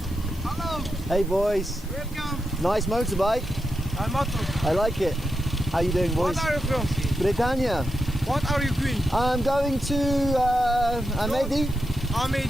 Hello. Hey boys. Welcome. Nice motorbike. I like it. How you doing, boys? What are you from? Britannia. What are you doing? I'm going to Amedi.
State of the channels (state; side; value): normal; both; correlation 0.87